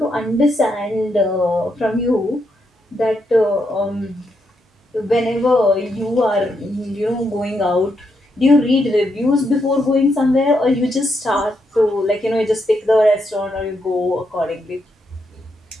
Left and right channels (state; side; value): normal; both; correlation 0.80